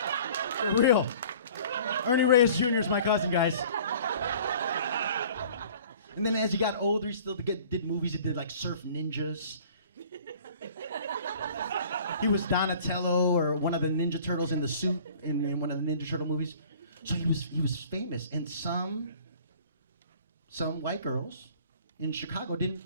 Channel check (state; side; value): inverted; both; correlation -0.49